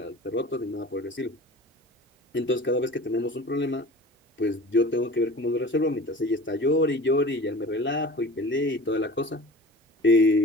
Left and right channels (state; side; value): normal; both; correlation 0.40